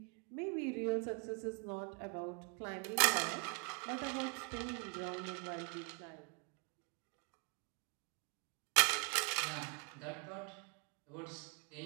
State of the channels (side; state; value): left; quieter; 34.8 dB